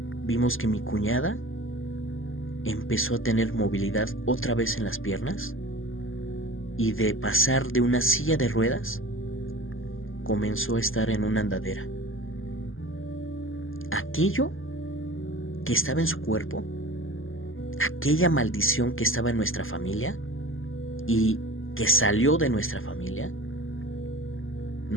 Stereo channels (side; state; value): right; late; 0.59 ms